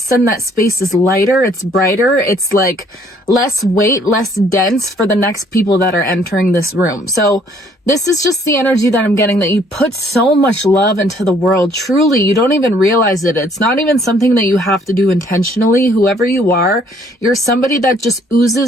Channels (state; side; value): normal; both; correlation 0.62